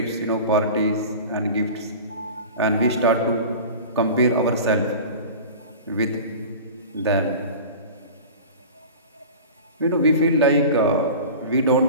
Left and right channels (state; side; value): inverted; both; correlation -0.36